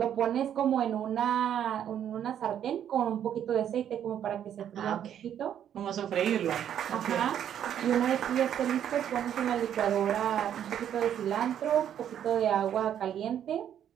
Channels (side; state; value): left; quieter; 9.8 dB